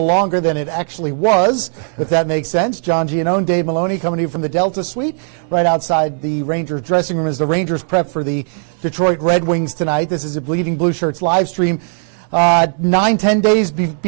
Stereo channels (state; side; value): silent; left; 67 dB below the other